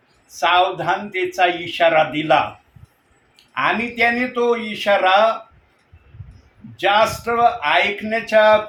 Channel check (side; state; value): both; identical; correlation 1.00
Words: सावधानतेचा इशारा दिला, आणि त्याने तो इशारा जास्त ऐकण्याच्या